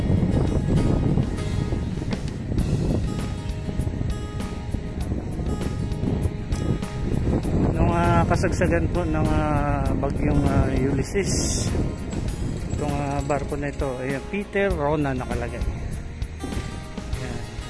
Kasagsagan po ng bagyong Ulysses, itong barko na ito ay Peter Rona nakalagay. Ayan.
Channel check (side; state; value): both; identical; correlation 1.00